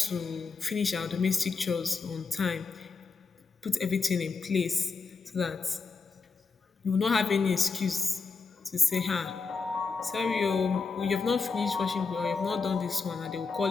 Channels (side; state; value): right; quieter; 4.6 dB